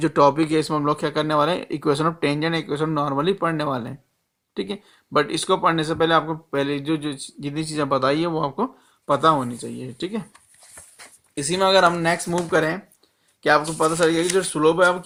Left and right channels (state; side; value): identical; both; correlation 1.00